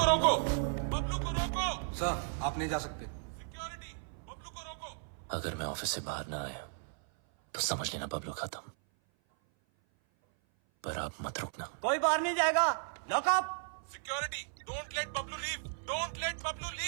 रोको। बबलू को रोको। सर, आप नहीं जा सकते। Security. बबलू को रोको। अगर मैं ऑफिस से बाहर ना आया तो समझ लेना बबलू खत्म। पर आप मत रुकना। कोई बाहर नहीं जाएगा। Lock up. Security, don't let Bablu leave, don't let Bablu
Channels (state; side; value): silent; left; 54 dB below the other